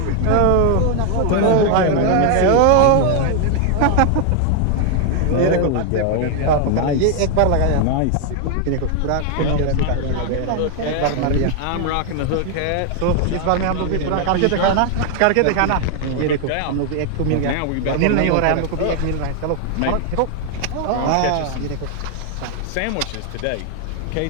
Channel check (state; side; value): different; both; correlation 0.00